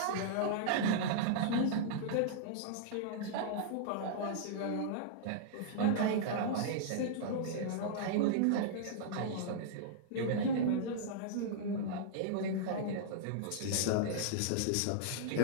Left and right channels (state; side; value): different; both; correlation -0.02